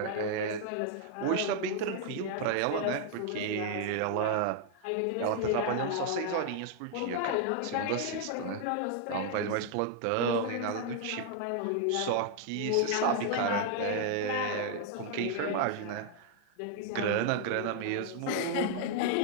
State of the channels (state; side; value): different; both; correlation 0.00